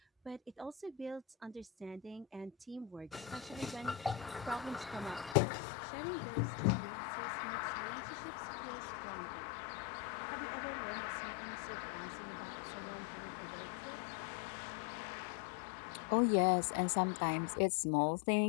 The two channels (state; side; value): drops out; right; at 5.4 s